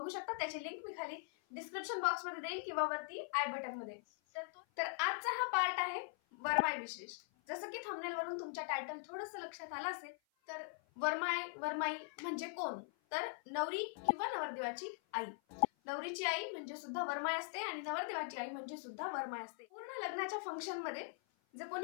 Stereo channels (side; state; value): right; silent; 50 dB below the other